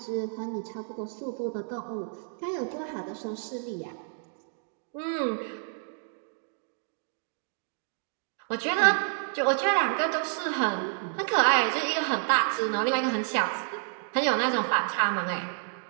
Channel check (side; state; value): left; silent; digital silence